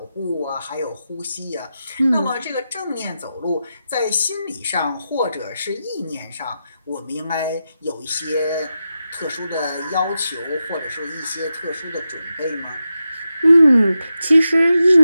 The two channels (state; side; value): inverted; both; correlation -0.89